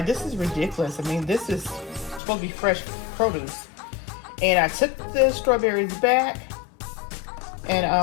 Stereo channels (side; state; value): right; drops out; at 2.2 s